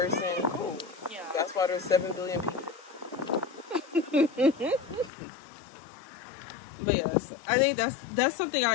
cool. Yeah. That's why there's 7 billion people. But yes, I think that's something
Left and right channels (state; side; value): drops out; right; at 5.1 s